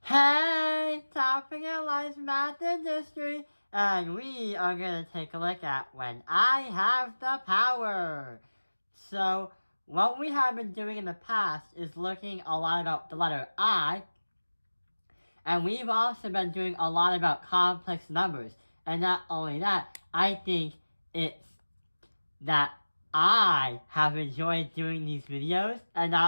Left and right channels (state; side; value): inverted; both; correlation -1.00